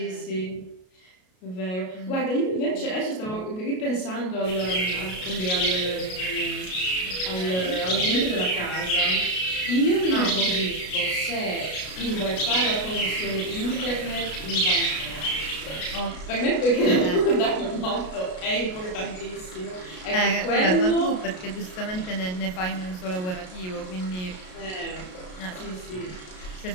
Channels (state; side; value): late; right; 33 ms